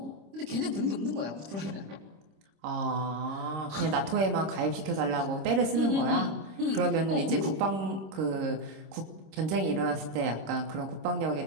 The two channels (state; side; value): late; left; 26 ms